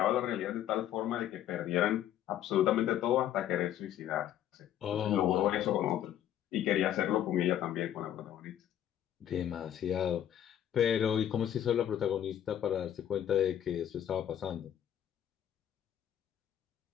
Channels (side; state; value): right; quieter; 10.9 dB